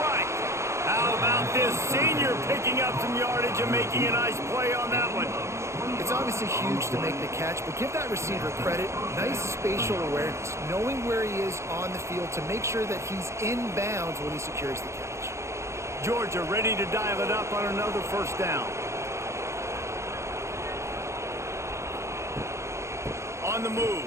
How about this senior picking up some yardage and making a nice play on that one? It's obviously huge to make the catch, but give that receiver credit. Nice spatial awareness, knowing where he is on the field to make sure that he's in bounds when he secures the catch. Georgia ready to dial it up on another 1st down. On the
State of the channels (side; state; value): left; late; 0.14 ms